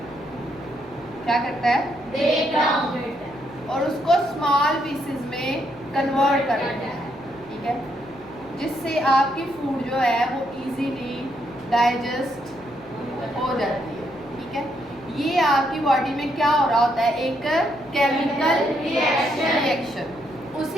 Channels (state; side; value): noise; left; hum, 25 dB below the sound